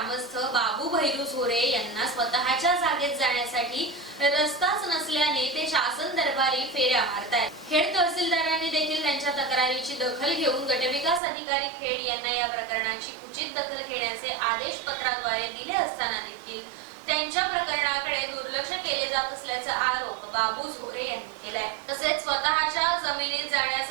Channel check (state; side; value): drops out; left; at 11.2 s